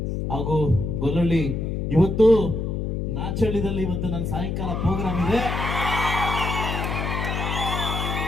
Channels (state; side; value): noise; left; hum, 2 dB below the sound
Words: ಹಾಗೂ ಗೊಲ್ಲಳ್ಳಿ, ಇವತ್ತು ನಾಚಳ್ಳಿದಲ್ಲಿ ಇವತ್ತು ನನ್ನ ಸಾಯಂಕಾಲ ಪ್ರೋಗ್ರಾಮ್ ಇದೆ.